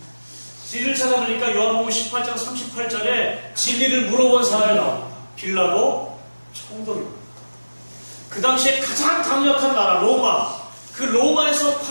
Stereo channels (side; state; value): both; inverted; correlation -1.00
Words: 진리를 찾아보니까 요한복음 18장 38절에 진리를 물어본 사람이 나옵니다. 빌라도 총독입니다. 그 당시에 가장 강력한 나라 로마, 그 로마에서